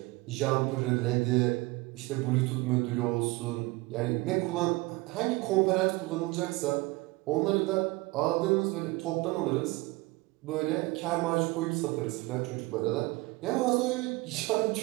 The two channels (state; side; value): quieter; left; 22.7 dB